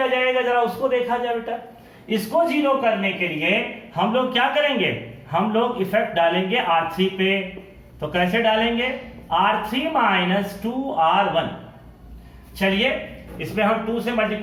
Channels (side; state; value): both; identical; correlation 1.00